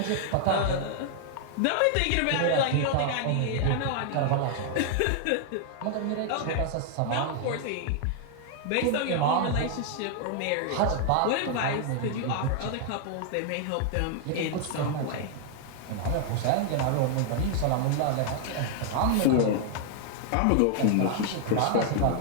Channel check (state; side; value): different; both; correlation 0.00